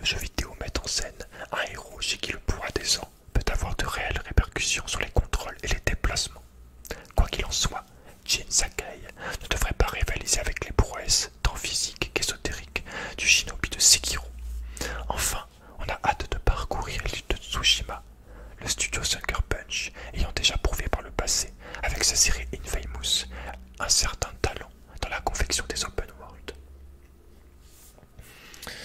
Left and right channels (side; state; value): both; identical; correlation 1.00